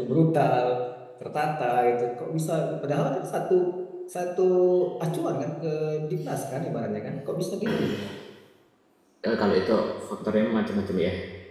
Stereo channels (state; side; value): identical; both; correlation 1.00